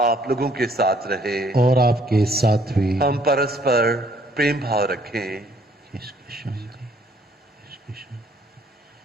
आप लोगों के साथ रहे और आपके साथ भी। हम परस्पर प्रेम भाव रखें। इसकी शांति, इसकी शांति।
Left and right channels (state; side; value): normal; both; correlation 0.63